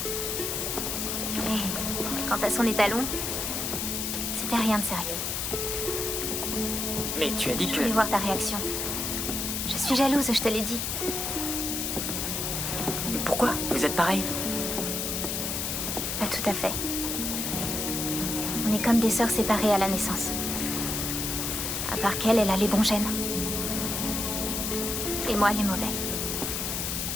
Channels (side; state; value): left; noise; hiss, 1 dB below the sound